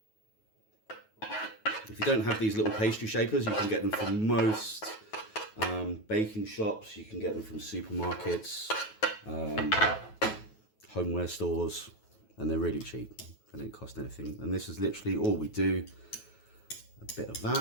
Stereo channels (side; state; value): right; late; 9.3 ms